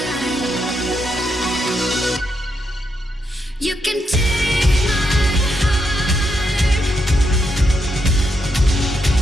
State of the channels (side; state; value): both; normal; correlation 0.80